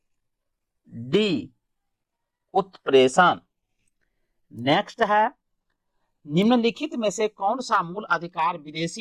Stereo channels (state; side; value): identical; both; correlation 1.00